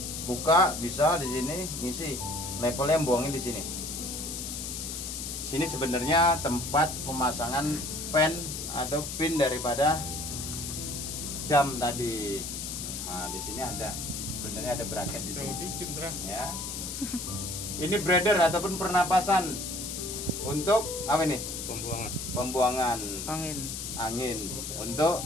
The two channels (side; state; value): left; noise; hiss, 6 dB below the sound